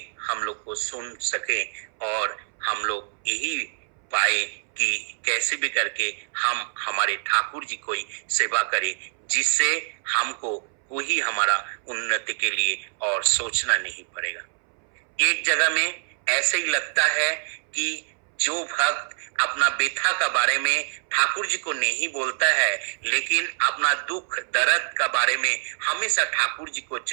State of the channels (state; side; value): silent; left; 62 dB below the other